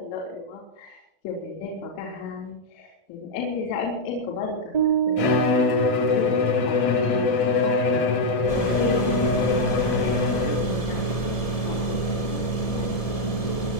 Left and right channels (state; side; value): late; right; 1.7 ms